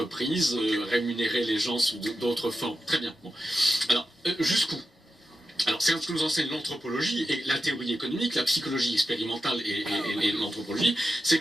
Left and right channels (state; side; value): normal; both; correlation 0.90